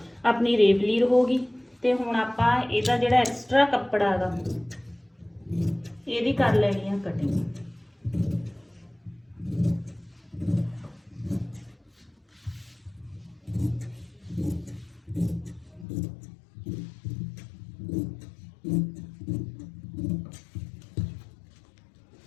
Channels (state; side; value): drops out; right; at 15.9 s